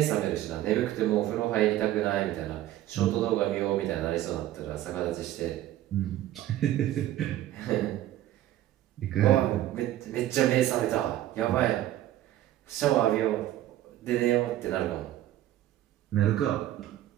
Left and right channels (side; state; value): left; quieter; 13.7 dB